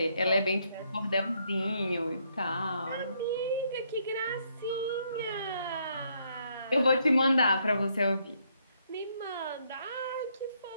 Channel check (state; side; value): inverted; both; correlation -0.72